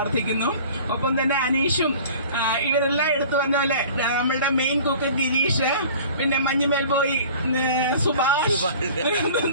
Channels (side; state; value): both; inverted; correlation -0.45